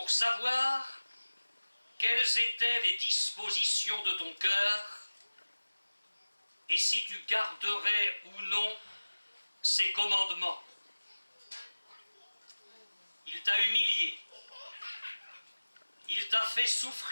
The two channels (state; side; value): inverted; both; correlation -1.00